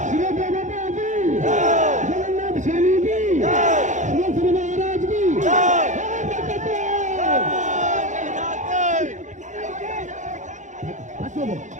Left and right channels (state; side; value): late; left; 0.35 ms